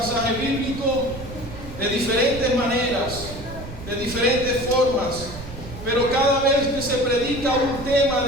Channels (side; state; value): right; noise; rumble, 12 dB below the sound